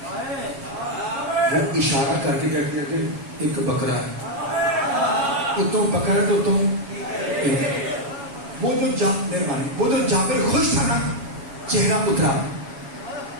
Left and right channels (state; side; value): late; left; 7.2 ms